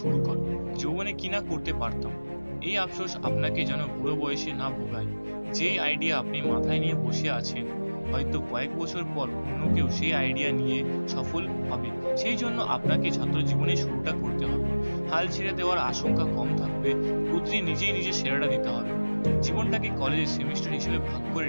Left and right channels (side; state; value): both; inverted; correlation -1.00